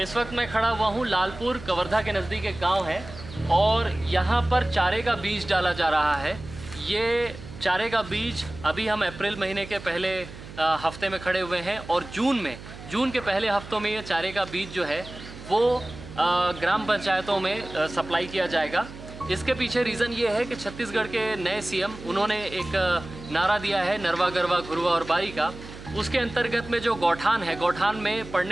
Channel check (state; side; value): noise; right; hum, 15 dB below the sound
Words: इस वक्त मैं खड़ा हुआ हूँ लालपुर कवर्धा के नज़दीक एक गांव है और यहाँ पर चारे का बीज डाला जा रहा है। ये चारे का बीज अभी हम अप्रैल महीने के पहले हफ्ते में खड़े हुए हैं और जून के पहले हफ्तों में ये चारे का बीज जो है वो ग्राम पंचायतों में सप्लाई किया जाएगा। इसके पीछे रीज़न ये है कि छत्तीसगढ़ के नए सीएम उन्होंने एक नारा दिया है नरवा गरवा घुरवा और बारी का। उसके अंतर्गत में जो गौठान है, गौठान में